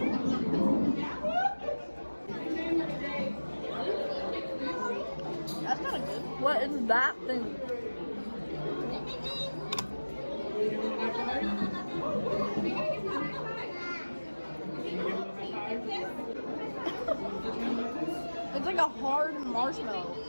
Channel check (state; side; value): inverted; both; correlation -1.00